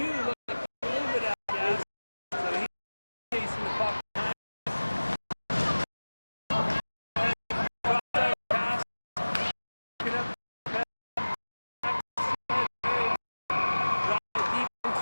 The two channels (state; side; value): inverted; both; correlation -1.00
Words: looks like a little bit out of gas. So he's chasing the puck behind. Pass. Pick it up. Drop it deep